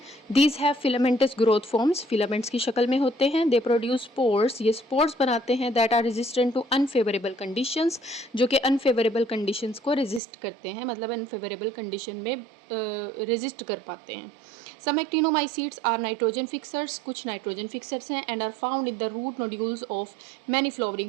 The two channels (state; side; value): drops out; left; at 10.2 s